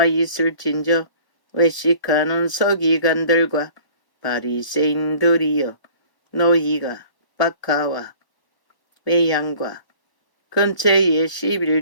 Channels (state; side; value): late; right; 1.1 ms